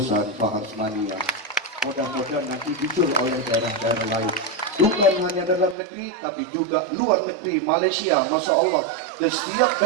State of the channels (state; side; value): drops out; left; at 5.8 s